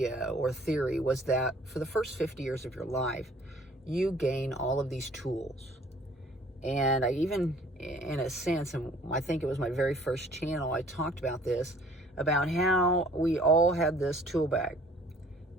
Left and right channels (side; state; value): both; normal; correlation 0.55